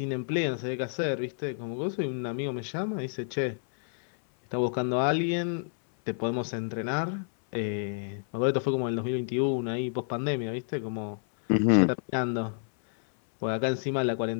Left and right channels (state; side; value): silent; right; 58 dB below the other